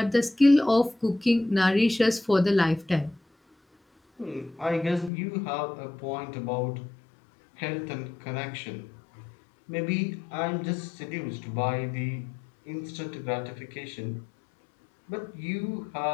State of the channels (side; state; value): right; drops out; at 5.1 s